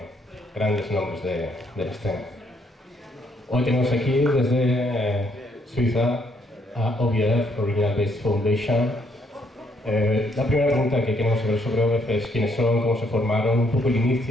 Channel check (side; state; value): both; normal; correlation 0.71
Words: grandes nombres de la escena. Hoy tenemos aquí desde Suiza a O.B.F, Original Based Foundation. La primera pregunta que queremos saber sobre O.B.F es quiénes son, cómo se formaron, un poco el